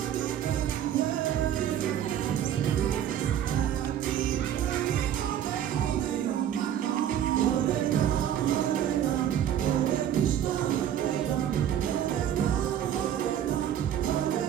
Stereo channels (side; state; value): left; quieter; 10.2 dB